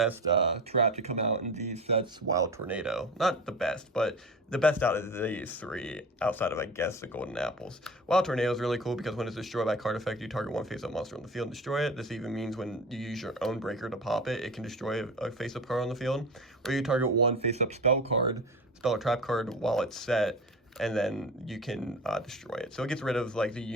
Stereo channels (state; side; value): normal; both; correlation 0.32